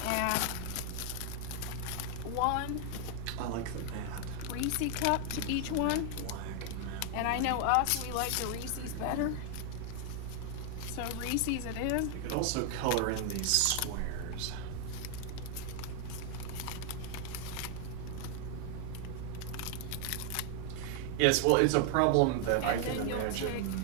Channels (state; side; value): different; both; correlation 0.00